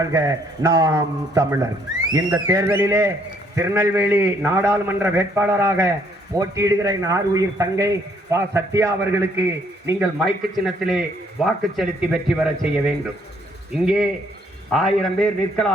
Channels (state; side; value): normal; both; correlation 0.66